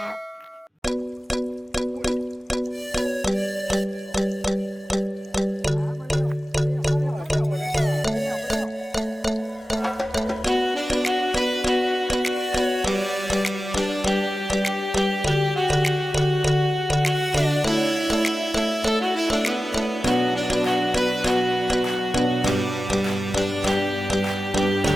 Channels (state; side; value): normal; both; correlation 0.95